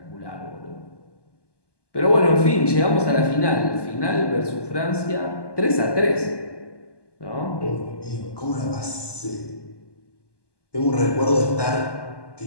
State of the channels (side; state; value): right; late; 1.2 ms